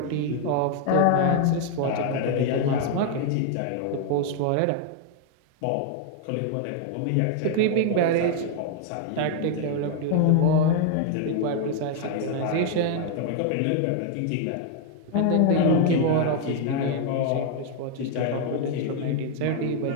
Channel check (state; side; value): different; both; correlation 0.00